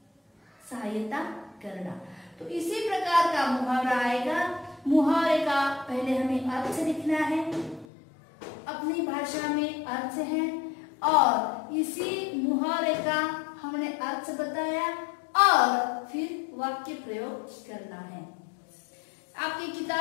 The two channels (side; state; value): right; drops out; at 7.9 s